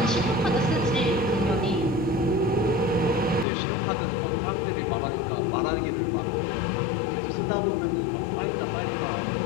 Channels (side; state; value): right; drops out; at 3.5 s